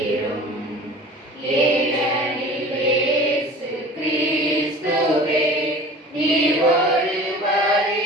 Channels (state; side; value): normal; both; correlation 0.41